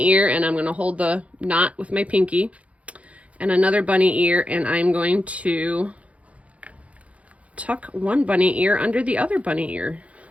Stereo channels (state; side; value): late; left; 0.065 ms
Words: ear, and I'm going to hold the knot with my pinky, and another bunny ear, and I'm going to tuck one bunny ear under the other bunny ear.